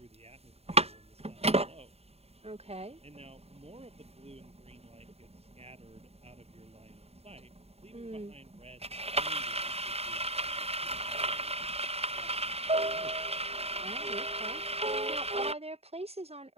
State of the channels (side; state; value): left; late; 0.30 ms